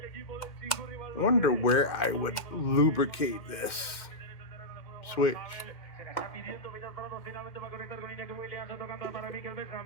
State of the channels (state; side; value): late; right; 2.1 ms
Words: wonder where I would lubricate this switch.